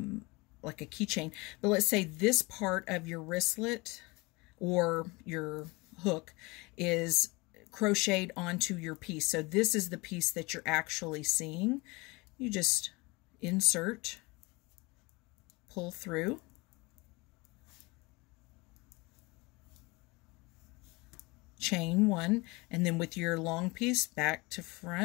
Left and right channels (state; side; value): quieter; right; 25.0 dB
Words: like a keychain. But let's say this part of your wristlet or your hook is crocheted onto your piece. So this is the piece that you're actually seeing. You just insert, pull through, chain one, and then with your long piece back to